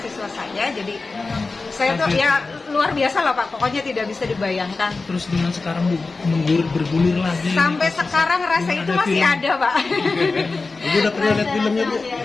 saya, jadi saya tuh ya luar biasa lah Pak, pokoknya tidak bisa dibayangkan. Terus dengan sekarang Bu, bergulir lagi. Sampai sekarang rasa itu masih ada Pak. Ibu udah pernah lihat filmnya Bu?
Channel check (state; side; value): quieter; right; 3.8 dB